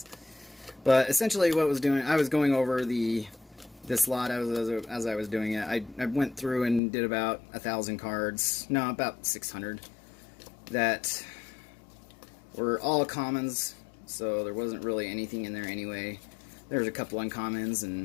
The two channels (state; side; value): drops out; right; at 6.8 s